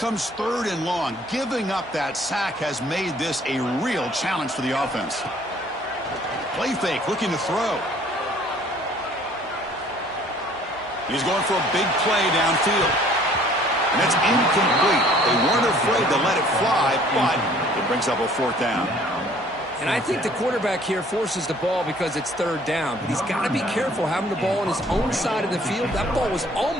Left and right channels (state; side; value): normal; both; correlation 0.56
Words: third and long. Giving up that sack has made this a real challenge for the offense. Play fake, looking to throw. He's going for a big play downfield. And that's incomplete. They weren't afraid to let it fly, but it brings up a fourth down. And I think the quarterback here forces the ball because it's third down. But he's got to be careful having the ball on his own side of the field. That ball was